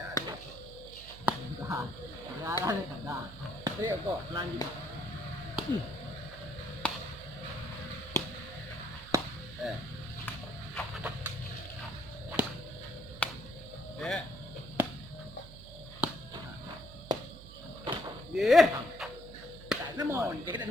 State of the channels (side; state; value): right; noise; hum, 16 dB below the sound